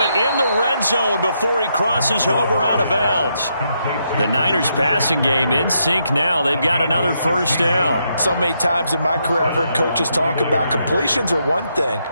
in the red zone before he crosses over out of bounds. The Niners passing game in sync now. They've got another first down. So many times in my career I've heard coaches talk about completions are one thing,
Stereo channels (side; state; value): both; inverted; correlation -0.79